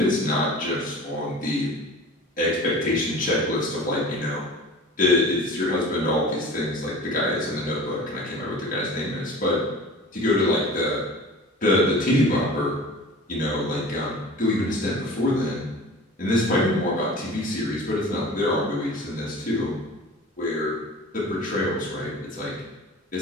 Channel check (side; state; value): both; normal; correlation 0.39